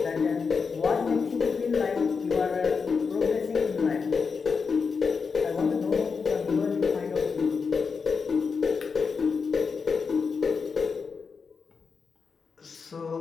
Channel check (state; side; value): quieter; right; 5.3 dB